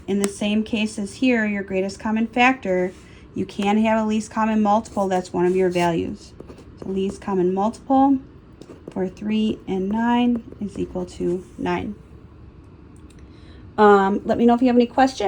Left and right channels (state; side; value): identical; both; correlation 1.00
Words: in the same case as here, your greatest common factor, you can have a least common multiple that's one of your values. So least common multiple for 3 and 9 is equal to 9. Let me know if you have any